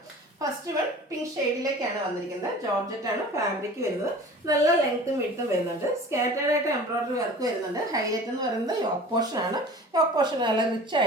ഫസ്റ്റ് വൺ പിങ്ക് ഷെയ്ഡിലേക്കാണ് വന്നിരിക്കുന്നത്. ജോർജറ്റ് ആണ് ഫാബ്രിക് വരുന്നത്. നല്ല ലെങ്ത്തും വിഡ്ത്തും വരുന്നുണ്ട്. സ്കാറ്റേർഡ് ആയിട്ട് എംബ്രോയിഡറി വർക്ക് വരുന്നുണ്ട്. ഹൈലൈറ്റ് എന്ന് പറയുന്നത് യോക്ക് പോർഷൻ ആണ്. യോക്ക് പോർഷൻ നല്ല റിച്ച്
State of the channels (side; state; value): both; normal; correlation 0.42